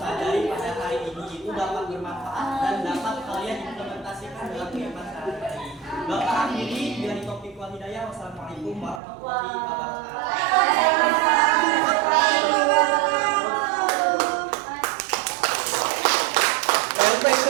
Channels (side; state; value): left; drops out; at 9.0 s